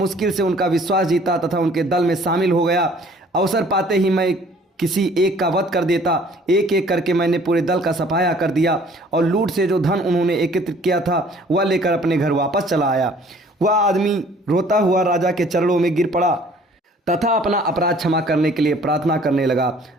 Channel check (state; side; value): normal; both; correlation 0.55